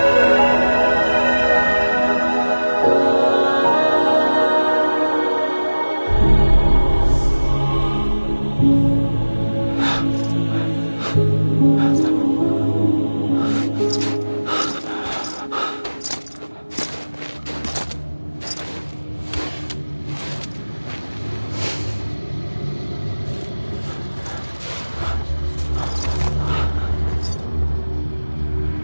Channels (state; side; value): inverted; both; correlation -1.00